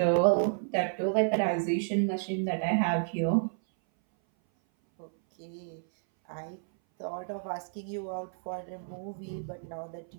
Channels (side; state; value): left; silent; 57 dB below the other